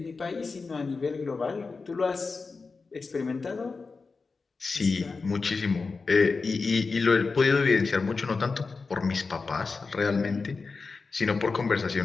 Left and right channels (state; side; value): quieter; right; 4.4 dB